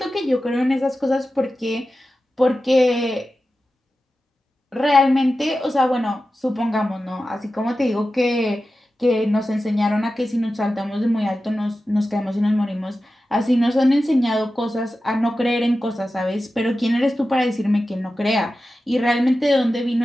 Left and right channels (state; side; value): normal; both; correlation 0.93